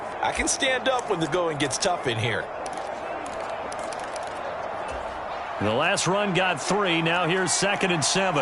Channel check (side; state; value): both; identical; correlation 1.00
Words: I can stand up when the going gets tough in here. The last run got 3. Now here's 2nd and